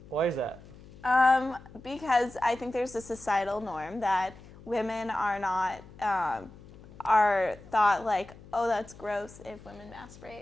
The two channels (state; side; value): noise; left; hum, 20 dB below the sound